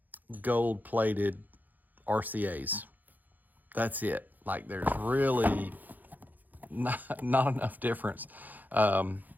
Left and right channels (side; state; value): left; late; 0.084 ms